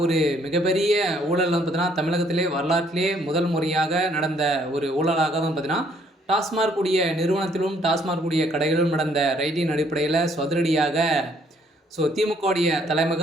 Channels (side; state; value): both; normal; correlation 0.65